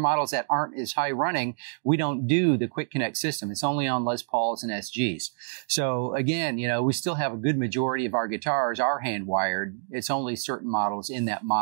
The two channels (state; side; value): silent; left; digital silence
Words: that aren't as high running, we don't do the QuickConnect system. It's only on Les Pauls and SGs. So again, we still have a good majority of our guitars are hand wired. It's only certain models in that